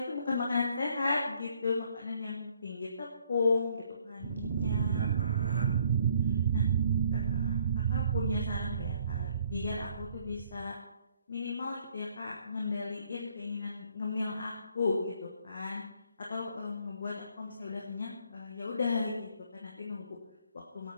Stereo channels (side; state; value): both; inverted; correlation -0.65